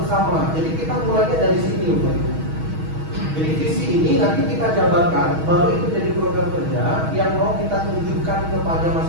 Jadi kita mulainya dari sini Bapak Ibu. Jadi visi ini nanti kita jabarkan, baru itu jadi program kerja yang mau kita tunjukkan kepada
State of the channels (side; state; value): left; late; 6.3 ms